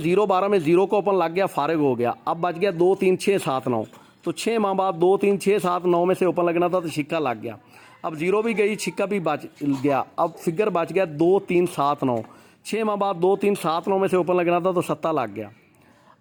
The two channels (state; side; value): identical; both; correlation 1.00